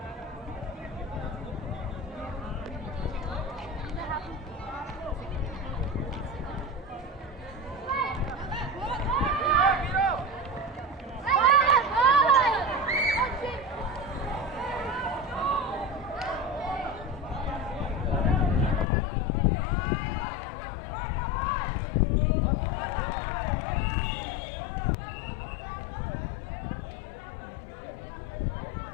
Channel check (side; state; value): right; drops out; at 18.9 s